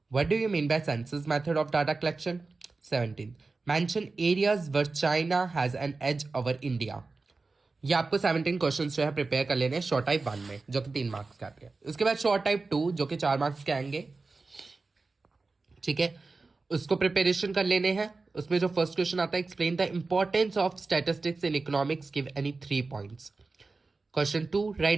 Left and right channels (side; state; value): left; quieter; 3.8 dB